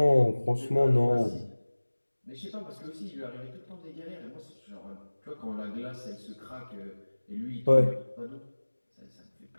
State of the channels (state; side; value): inverted; both; correlation -1.00